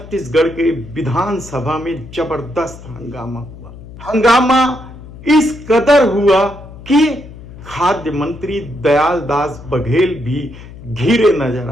के विधानसभा में जबरदस्त हंगामा हुआ। हंगामा इस कदर हुआ कि खाद्य मंत्री दयालदास बघेल भी घिरे नजर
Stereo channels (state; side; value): noise; left; hum, 16 dB below the sound